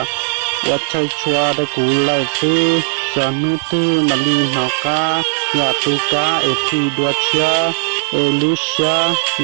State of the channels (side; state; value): left; silent; digital silence